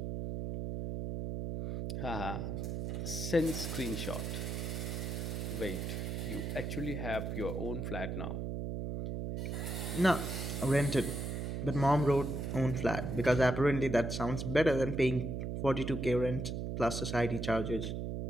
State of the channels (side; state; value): right; noise; hum, 3 dB below the sound